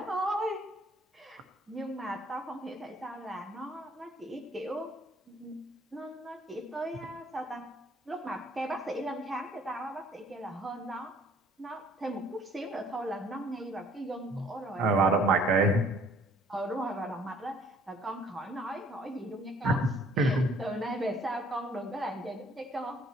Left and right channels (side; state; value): both; normal; correlation 0.58